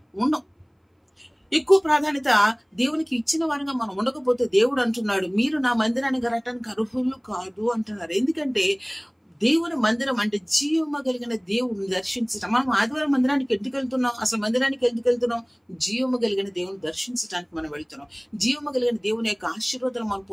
ఉండం. ఎక్కువ ప్రాధాన్యత దేవునికి ఇచ్చిన వారంగా మనం ఉండకపోతే దేవుడు అంటున్నాడు, మీరు నా మందిరానికి రావటానికి అర్హులు కాదు అంటున్నారు. ఎందుకంటే దేవుని మందిరం అంటే జీవము కలిగిన దేవుని దర్శించటం. మనం ఆదివారం మందిరానికి ఎందుకు వెళ్తున్నాం? అసలు మందిరానికి ఎందుకు వెళ్తున్నాం? జీవము కలిగిన దేవుని దర్శించడానికి మనం వెళ్తున్నాం. జీవము కలిగిన దేవుని యొక్క ఆశీర్వాదాలు మనం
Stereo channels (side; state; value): both; identical; correlation 1.00